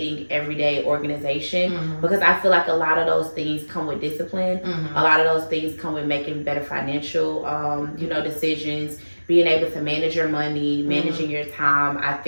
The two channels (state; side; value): inverted; both; correlation -1.00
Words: everyday organization because I feel like a lot of those things come with discipline. A lot of those things come with making better financial, decisions, being able to manage your money, managing your time, I